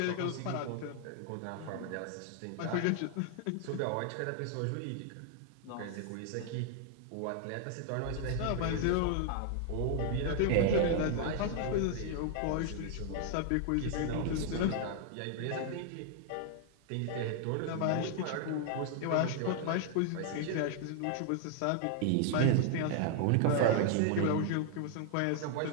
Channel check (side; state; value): both; different; correlation 0.00